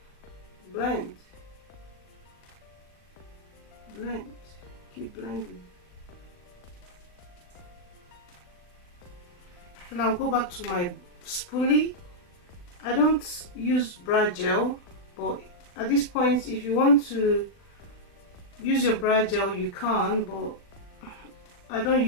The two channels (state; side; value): late; right; 39 ms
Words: blend. Keep blending. Then I'll go back to my spoolie. I don't use brow gel, but at this point if you want to use your brow gel you can, but I don't